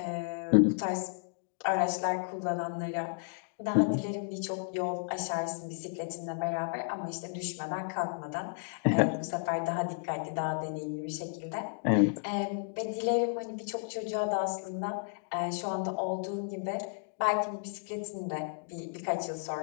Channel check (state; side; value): silent; right; digital silence